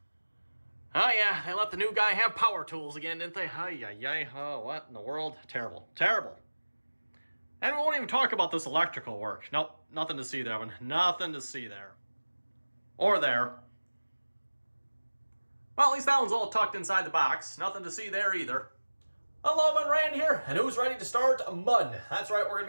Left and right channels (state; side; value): inverted; both; correlation -1.00